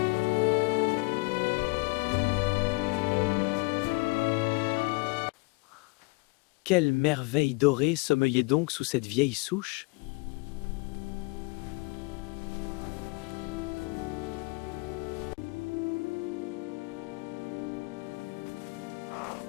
Quelle merveille dorée sommeillait donc sous cette vieille souche?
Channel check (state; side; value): quieter; right; 28.0 dB